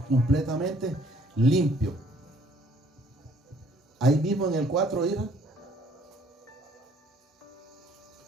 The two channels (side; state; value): both; normal; correlation 0.61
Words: completamente limpio. Ahí mismo en el 4, ¿ira?